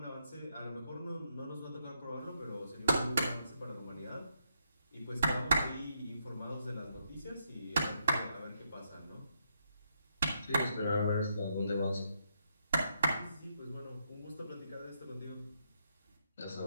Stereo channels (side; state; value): both; inverted; correlation -0.78